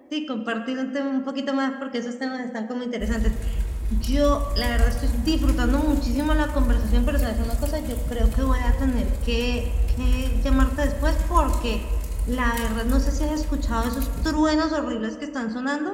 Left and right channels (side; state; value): both; identical; correlation 1.00